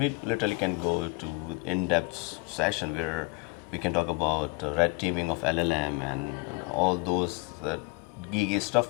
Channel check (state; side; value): quieter; right; 26.1 dB